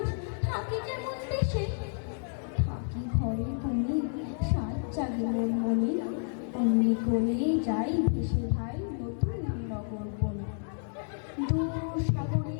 থাকি কেমন দেশে। থাকি ঘরে কোণে সাত জাগে মন মনে, অমনি করে যাই ভেসে ভাই নতুন নগর বনে। দূর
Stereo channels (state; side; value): silent; right; digital silence